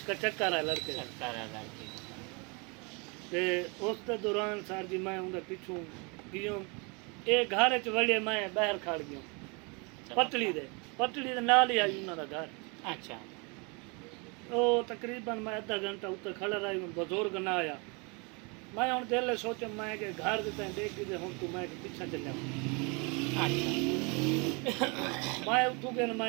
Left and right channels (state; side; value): quieter; left; 31.3 dB